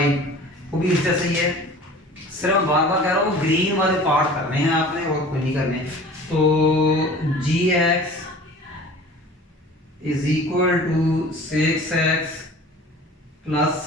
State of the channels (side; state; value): both; normal; correlation 0.43